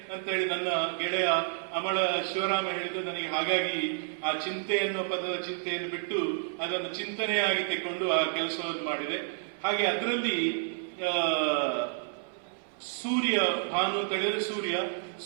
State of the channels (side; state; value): left; silent; 58 dB below the other